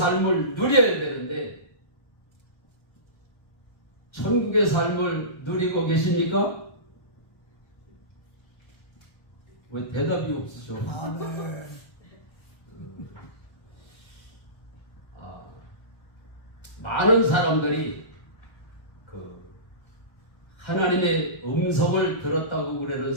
누려야 되는데 천국의 삶을 누리고 계십니까? 왜 대답이 없으셔? 아멘. 많은 사람들이 하나님의 음성을 들었다고 그러는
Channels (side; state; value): right; late; 1.3 ms